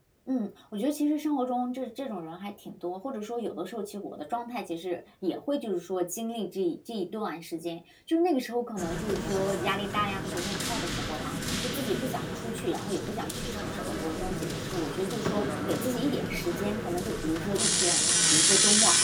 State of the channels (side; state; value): both; identical; correlation 1.00